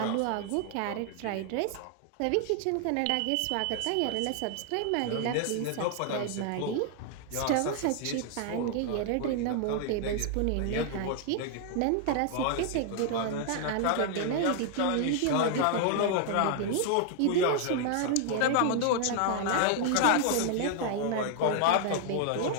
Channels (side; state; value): both; different; correlation 0.00